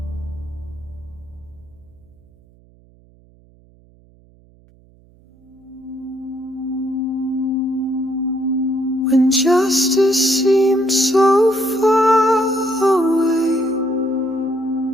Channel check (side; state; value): right; noise; hum, 29 dB below the sound